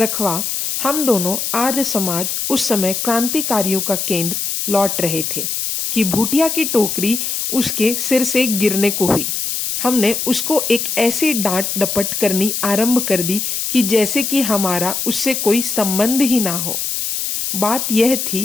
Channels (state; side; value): noise; left; hiss, 2 dB below the sound